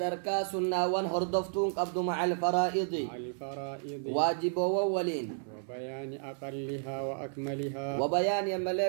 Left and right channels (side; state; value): left; silent; 56 dB below the other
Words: سنة وان هردفتون قبض مع الفرائض واجب وولين وبيان أقلها وأكملها. وبيان